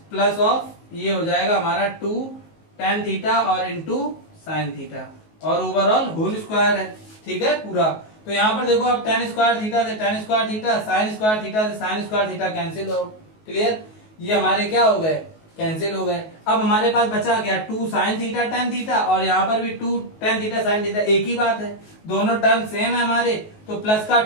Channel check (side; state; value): right; late; 19 ms